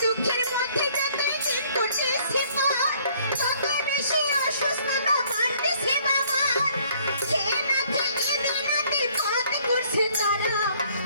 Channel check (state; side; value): inverted; both; correlation -0.61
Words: দুঃখের মধ্যে যতই দিন করতেছে পার, তত বেশি অসুস্থতা বাড়তেছে বাবার। খেয়ে না খেয়ে দিনাতে পথ করছে তারা,